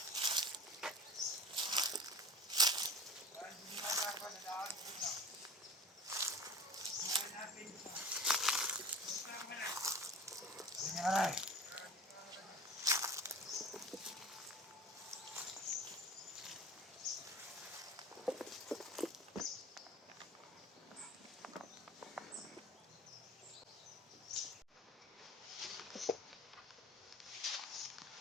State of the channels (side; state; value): both; normal; correlation 0.37